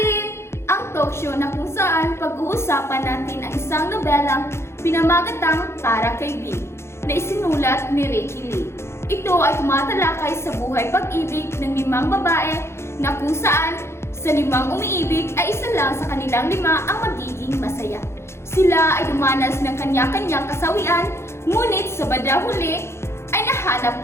Ang talk show na kung saan pag-uusapan natin ang isang nobelang pinamagatang Para Kay B na isinulat ni Ricky Lee. Ito ay tumatalakay sa buhay pag-ibig ng 5 babae na kung saan sa 5 umiibig ay isa lang sa kanilang 5 ang magiging masaya. Sila ay dumanas ng kanya-kanyang kasawian, ngunit sa bandang huli ay nahanap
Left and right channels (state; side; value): late; right; 0.13 ms